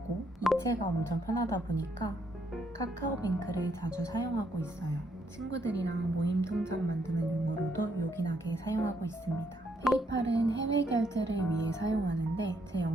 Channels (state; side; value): normal; both; correlation 0.74